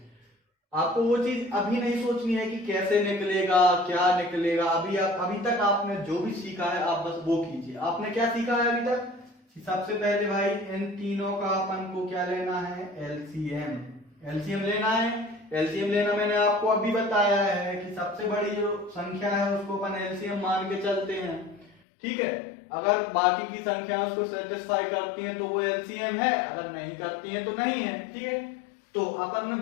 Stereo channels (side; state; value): right; drops out; at 21.8 s